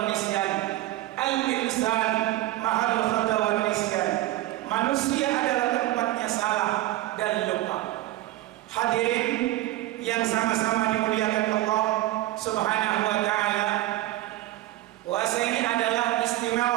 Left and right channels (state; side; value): quieter; left; 16.3 dB